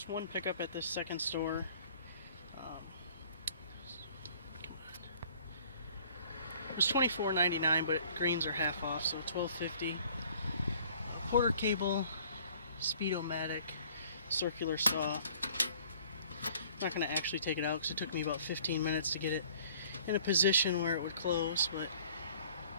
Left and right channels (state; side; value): inverted; both; correlation -0.55